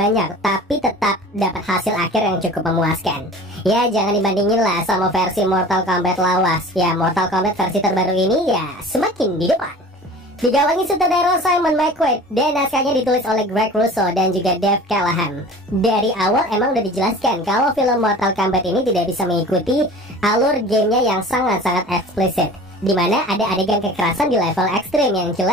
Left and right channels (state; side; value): normal; both; correlation 0.41